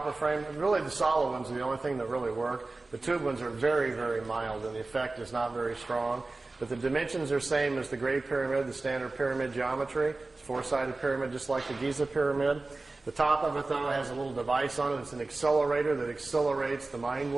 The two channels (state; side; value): quieter; left; 3.3 dB